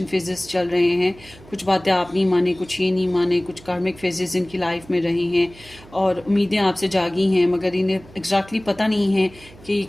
फेजेस चल रहे हैं, कुछ बातें आप नहीं माने, कुछ ये नहीं माने, कुछ कार्मिक फेजेस इनकी लाइफ में रहे हैं, और उम्मीदें आपसे जागी हैं, मगर इन्हें एग्जैक्टली पता नहीं है कि ये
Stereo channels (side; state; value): right; noise; hum, 22 dB below the sound